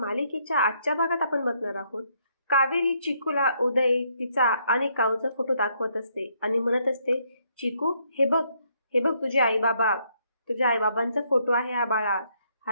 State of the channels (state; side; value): inverted; both; correlation -0.72